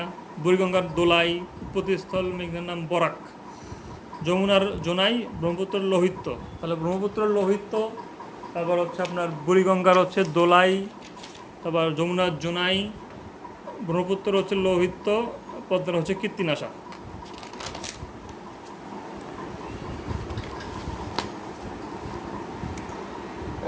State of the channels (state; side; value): identical; both; correlation 1.00